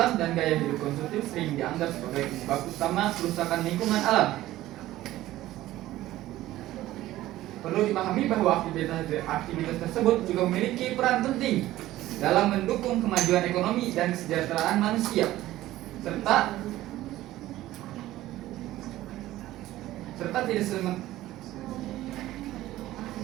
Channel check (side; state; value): left; quieter; 15.4 dB